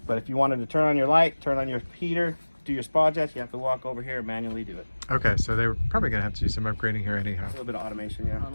But if you wanted to turn on your light, turn on your heater, do your spa jets, you have to walk over here and manually do it. Okay, so they were probably going to have to do some upgrading here anyhow. A little bit of automation, yeah. I don't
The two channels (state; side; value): inverted; both; correlation -1.00